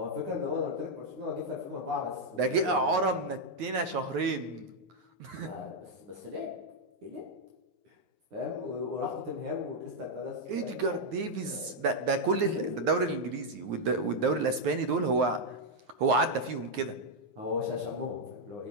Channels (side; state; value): left; late; 9.6 ms